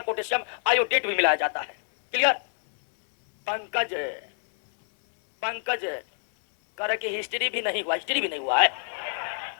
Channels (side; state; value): right; silent; 61 dB below the other